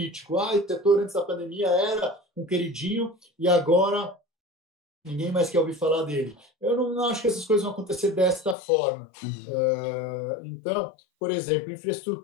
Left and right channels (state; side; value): drops out; right; at 8.6 s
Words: Esse setor antes da pandemia era um queridinho e agora ninguém mais quer ouvir falar dele. Eu não acho que essas coisas vão acontecer desta forma. Então, por exemplo,